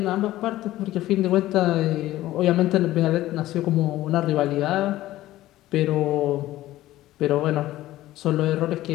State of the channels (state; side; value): quieter; right; 15.4 dB